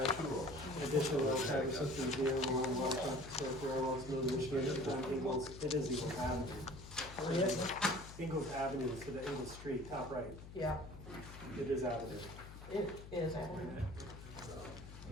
Additional well traffic systems here, well traffic circle, no Michigan, on Ingles, it is Ingles Avenue. Ingles Avenue, so the Ingles Street, top right, Yeah, it is Avenue. it is, and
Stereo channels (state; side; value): noise; left; hum, 13 dB below the sound